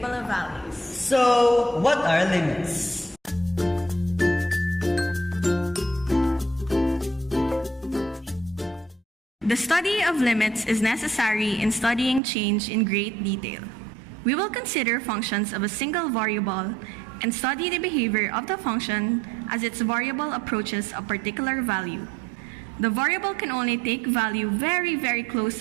of values. So, what are limits? The study of limits is necessary in studying change in great detail. We will consider functions of a single variable and study the behavior of the function as its variable approaches a particular value. The variable can only take value very, very close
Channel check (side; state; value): left; drops out; at 12.2 s